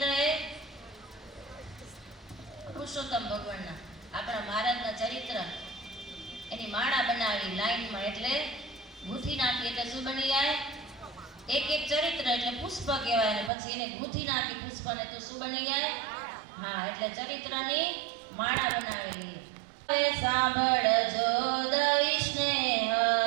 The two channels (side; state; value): left; drops out; at 13.5 s